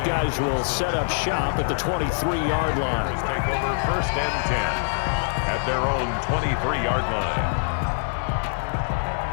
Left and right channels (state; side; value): silent; right; 62 dB below the other